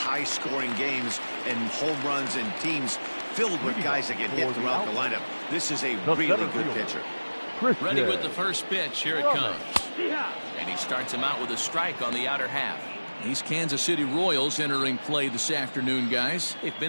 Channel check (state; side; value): inverted; both; correlation -1.00